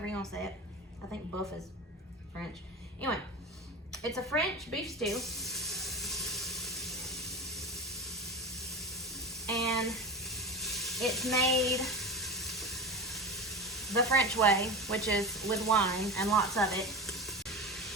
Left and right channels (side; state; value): both; normal; correlation 0.26